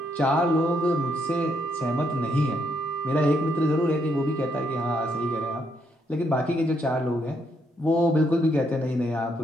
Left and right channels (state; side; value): normal; both; correlation 0.75